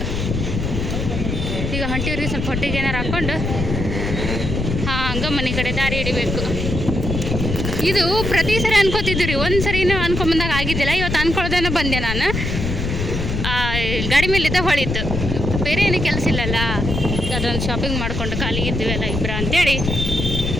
ಈಗ ಹೊಂಟಿವ್ರಿ, ಸ್ವಲ್ಪ ಹೊಟ್ಟಿಗೆ ಏನಾರು ಹಾಕ್ಕೊಂಡು ಹಂಗೆ ಮನೆ ಕಡೆ ದಾರಿ ಹಿಡಿಬೇಕು. ಇದು ಪ್ರತಿ ಸರಿ ಅನ್ಕೋತಿದ್ವಿ ರೀ, ಒಂದು ಸರಿನೂ ಅನ್ಕೊಂಬಂದಾಗ ಆಗಿದ್ದಿಲ್ಲ. ಇವತ್ತು ಅನ್ಕೊಳ್ಳೋದೇನೋ ಬಂದೆ ನಾನು. ಗಾಡಿ ಮೇಲಿದ್ದ ಹೊಳಿತು, ಬೇರೆ ಏನೂ ಕೆಲಸ ಇಲ್ಲಲ್ಲ. ಅದೊಂದು ಶಾಪಿಂಗ್ ಮಾಡಿಕೊಂಡು ಖಾಲಿ ಇದ್ದೀವಲ್ಲ ಇಬ್ಬರು ಅಂತೇಳಿ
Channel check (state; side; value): noise; left; rumble, 2 dB below the sound